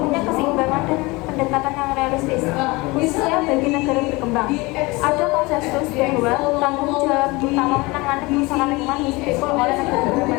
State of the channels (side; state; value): right; quieter; 23.7 dB